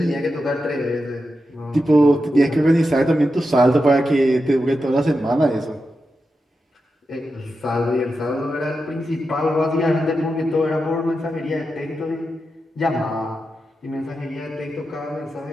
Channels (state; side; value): normal; both; correlation 0.89